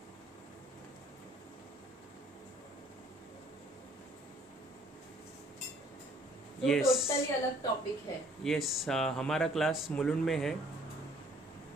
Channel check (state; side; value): normal; both; correlation 0.59